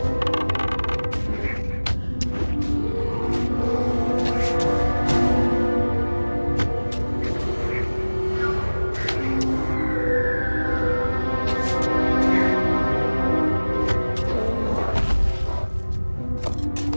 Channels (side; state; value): both; inverted; correlation -1.00